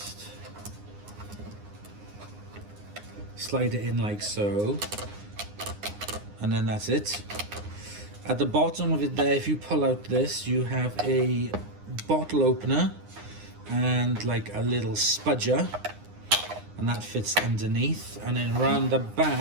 slide it in like so, and then that's it. At the bottom of it there, if you pull out this, you have a bottle opener and like a little spudger, and that fits underneath. And then around the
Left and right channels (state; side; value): late; left; 9.7 ms